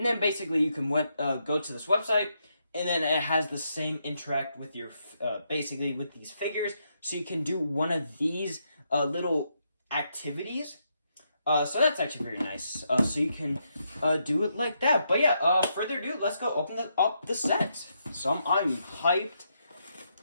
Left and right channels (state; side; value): inverted; both; correlation -0.79